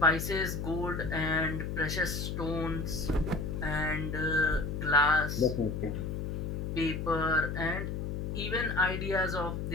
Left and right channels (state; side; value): noise; left; hum, 3 dB below the sound